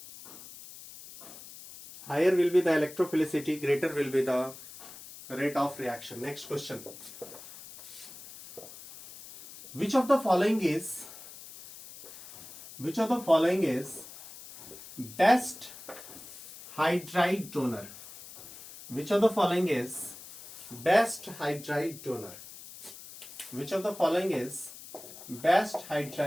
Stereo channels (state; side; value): noise; left; hiss, 16 dB below the sound